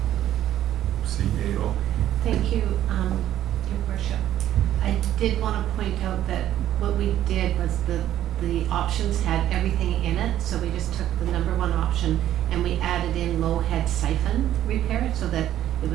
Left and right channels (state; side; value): quieter; left; 12.2 dB